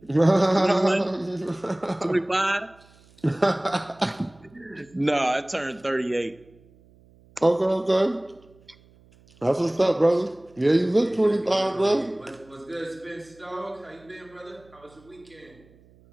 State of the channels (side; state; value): right; noise; hum, 28 dB below the sound